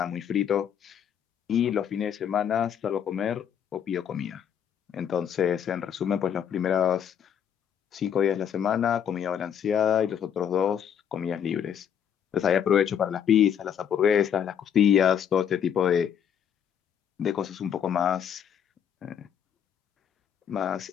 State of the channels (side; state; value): right; quieter; 8.6 dB